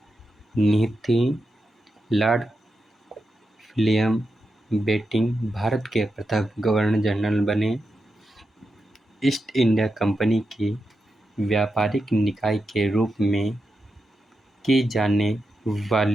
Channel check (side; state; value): both; normal; correlation 0.88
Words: निहित थीं। लॉर्ड विलियम बेंटिंक भारत के प्रथम गवर्नर जनरल बने। ईस्ट इंडिया कंपनी की व्यापारिक निकाय के रूप में की जाने